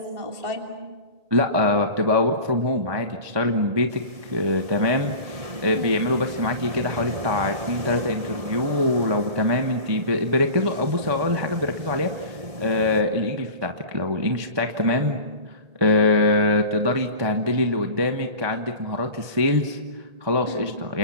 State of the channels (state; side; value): late; left; 1.7 ms